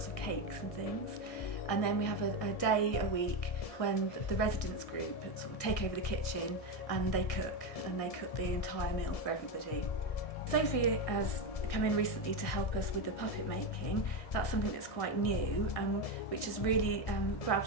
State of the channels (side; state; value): right; late; 1.8 ms